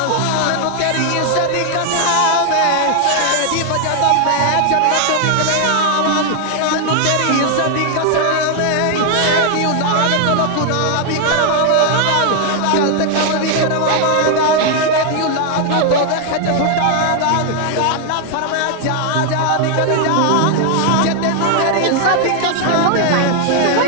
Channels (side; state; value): both; different; correlation 0.00